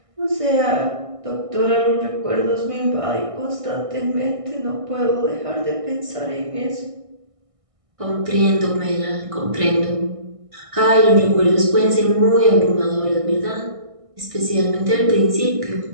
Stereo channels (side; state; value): left; late; 1.6 ms